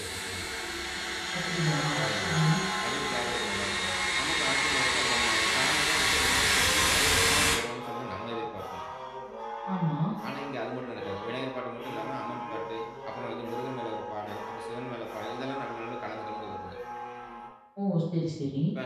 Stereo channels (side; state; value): both; identical; correlation 1.00